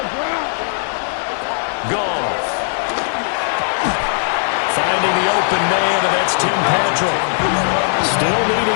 Goff. Finding the open man, and that's Tim Patrick. Still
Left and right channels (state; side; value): silent; right; digital silence